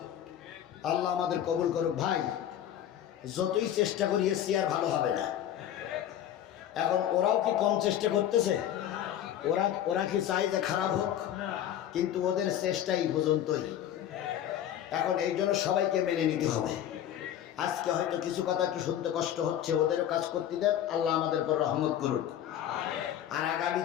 আল্লাহ আমাদের কবুল করুক। ভাই যতই চেষ্টা করি চেয়ার ভালো হবে না। এখন ওরাও কি কম চেষ্টা করতেছে? ওরা কি চায় যে খারাপ হোক? কিন্তু ওদের চেষ্টাই পর্যন্তই। এখন এই জন্য সবাইকে মেনে নিতে হবে। আজকে হয়তো কিছু কথা কি শুনতে কষ্ট হচ্ছে, ওদেরও কাজ করতে দেন। আল্লাহ আমাদের পর রহমত করুক। আর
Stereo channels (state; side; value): quieter; right; 10.8 dB